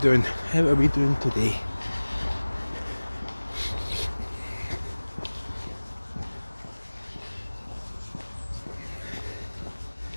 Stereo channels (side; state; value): both; inverted; correlation -1.00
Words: How are we doing today?